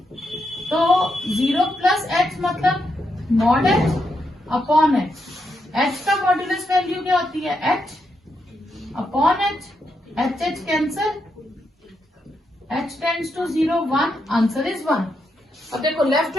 तो 0 प्लस एच मतलब mod h upon h. H का मॉड्यूलस वैल्यू क्या होती है? H upon h. H h cancel, h tends to 0 1, answer is 1। अब देखो left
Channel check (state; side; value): normal; both; correlation 0.82